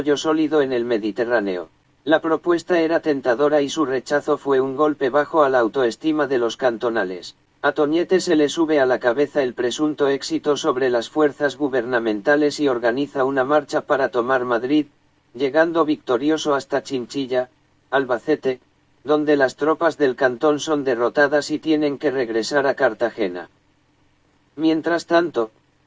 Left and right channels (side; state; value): both; identical; correlation 1.00